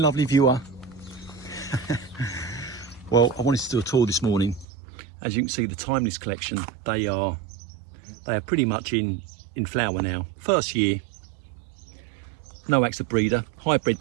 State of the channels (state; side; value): drops out; left; at 4.7 s